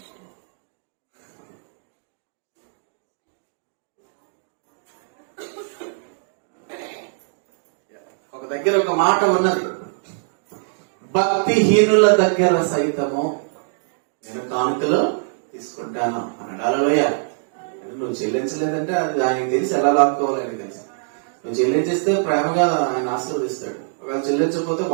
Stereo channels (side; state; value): left; silent; digital silence